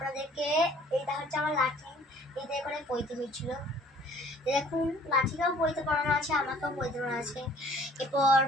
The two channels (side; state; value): both; normal; correlation 0.55